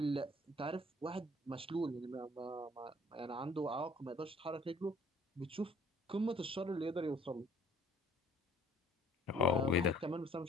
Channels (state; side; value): normal; both; correlation 0.55